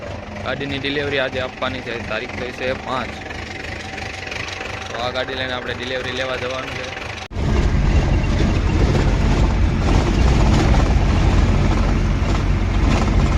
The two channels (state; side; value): identical; both; correlation 1.00